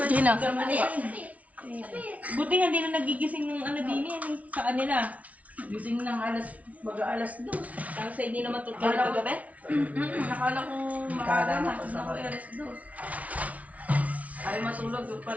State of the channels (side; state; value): left; late; 0.068 ms